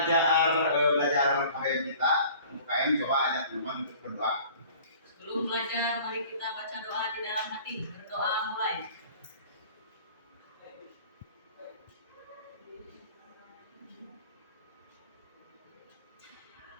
KBM kita, untuk KM coba ajak teman untuk berdoa. Sebelum belajar, mari kita baca doa di dalam hati. Berdoa mulai.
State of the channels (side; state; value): both; inverted; correlation -0.48